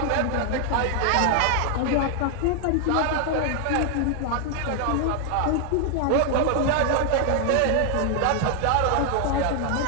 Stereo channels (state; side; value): different; both; correlation 0.00